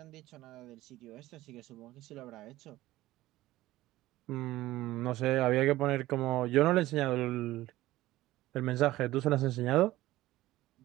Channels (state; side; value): quieter; left; 16.6 dB